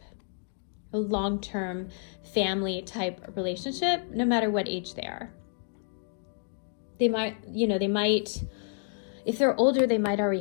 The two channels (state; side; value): silent; right; digital silence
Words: a long-term family type relationship, no matter what age they are. They might, you know, if they're older, they might already